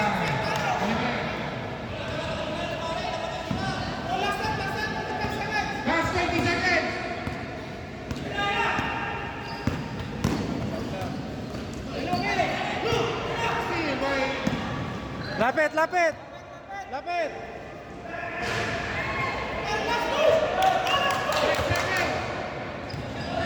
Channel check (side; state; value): both; identical; correlation 1.00